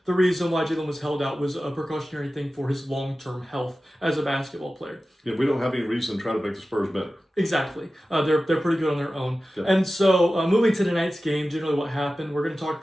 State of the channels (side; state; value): both; normal; correlation 0.95